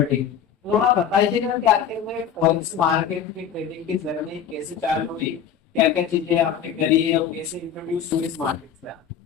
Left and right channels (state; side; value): quieter; right; 8.2 dB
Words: थोड़ा बताइएगा कि आखिर में फॉरेक्स मार्केट की ट्रेडिंग की जर्नी कैसे चालू हुई, क्या क्या चीजें आपने करी है और कैसे इंट्रोड्यूस हुई इस मार्केट से आप?